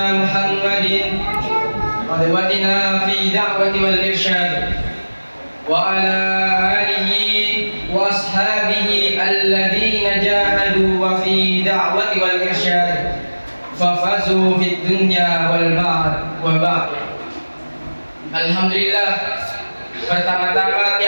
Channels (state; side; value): inverted; both; correlation -1.00